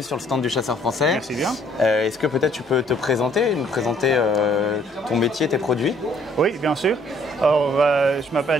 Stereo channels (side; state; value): both; normal; correlation 0.62